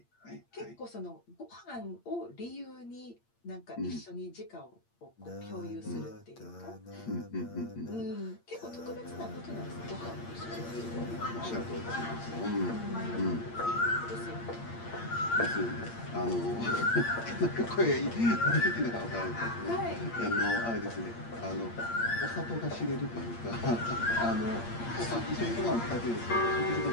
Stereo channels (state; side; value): late; right; 8.7 ms